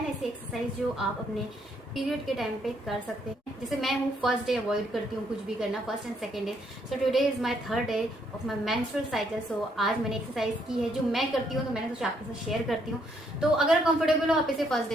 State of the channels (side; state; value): both; normal; correlation 0.71